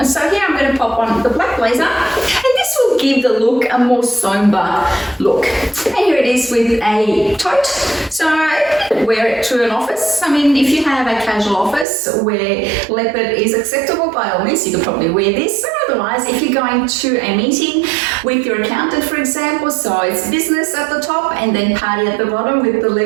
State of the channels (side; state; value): left; drops out; at 11.9 s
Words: So here I'm going to pop on the black blazer, and this will give the look a more somber look. And here it is with a tote. So you could wear it to an office. I mean, if you have a casual office where leopard is acceptable, by all means, you could probably wear this. Otherwise, if you're going to a meeting with your accountant, for example, so it's business at the top and then party at the bottom with the